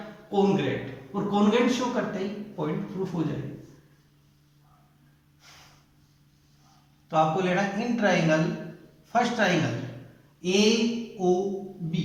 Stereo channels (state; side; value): identical; both; correlation 1.00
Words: कॉन्ग्रेट, और कॉन्ग्रेट शो करते ही पॉइंट प्रूफ हो जाएगा। तो आपको लेना in triangle, first triangle AOB,